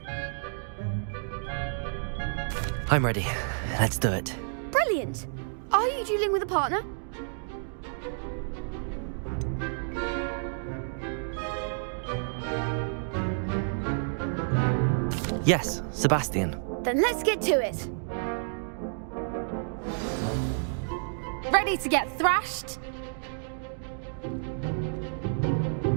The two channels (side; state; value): left; silent; digital silence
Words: I'm ready. Let's do it. Brilliant. Are you dueling with a partner? Yes, Sebastian. Then let's get to it. Ready to get thrashed?